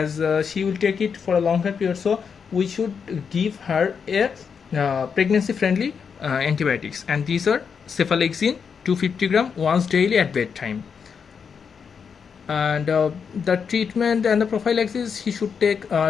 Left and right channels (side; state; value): right; quieter; 6.4 dB